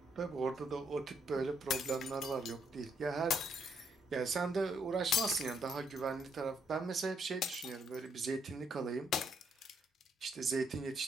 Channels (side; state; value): both; normal; correlation 0.73